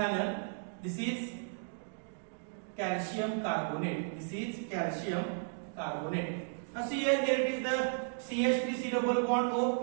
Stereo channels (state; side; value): silent; left; digital silence